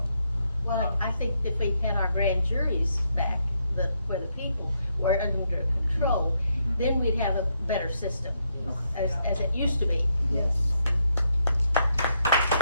Well, I think if we had our grand juries back, where the people were under control, then we'd have a better system, Okay. as it used to be. Yes.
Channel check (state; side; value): inverted; both; correlation -0.77